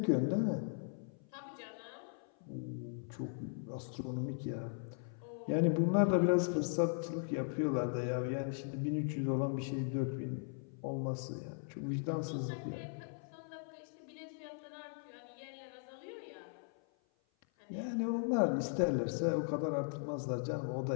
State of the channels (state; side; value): silent; right; 52 dB below the other